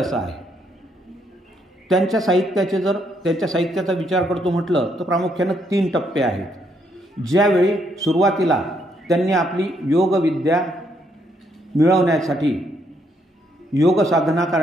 आहे. त्यांच्या साहित्याचा विचार करतो म्हटलं तर प्रामुख्यानं 3 टप्पे आहेत. ज्यावेळी सुरुवातीला त्यांनी आपली योगविद्या मिळवण्यासाठी योग साधना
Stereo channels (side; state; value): both; normal; correlation 0.73